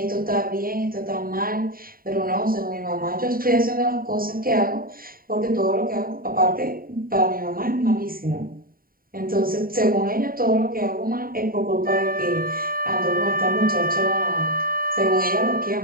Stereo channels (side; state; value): left; late; 0.42 ms